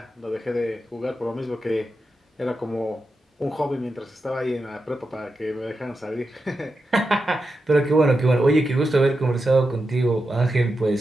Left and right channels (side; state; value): both; normal; correlation 0.89